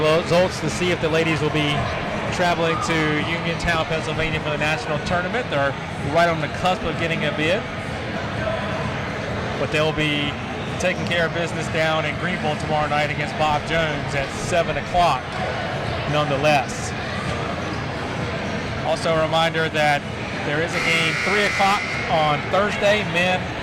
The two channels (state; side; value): identical; both; correlation 1.00